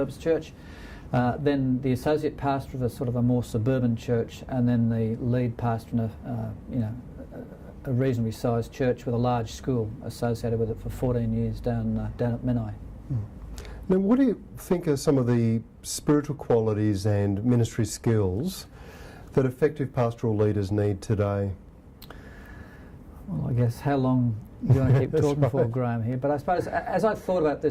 church, then the associate pastor of a sort of a more suburban church, and then the lead pastor in a reasonably sized church with a large school associated with it for 14 years down at Menai. Now, what do you think are some of the spiritual qualities and ministry skills that effective pastoral leaders need today? Well, I guess how long do you want to keep talking for, Graham, here? But I suppose as I thought about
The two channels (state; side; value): identical; both; correlation 1.00